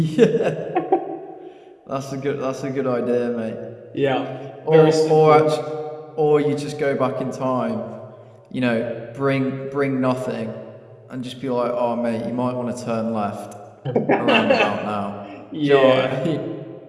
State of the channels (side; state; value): both; identical; correlation 1.00